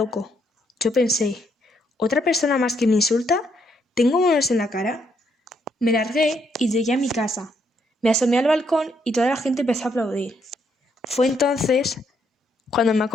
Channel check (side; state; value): both; normal; correlation 0.74